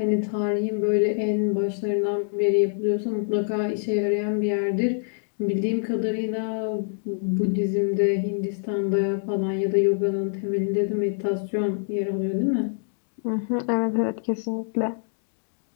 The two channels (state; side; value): silent; right; digital silence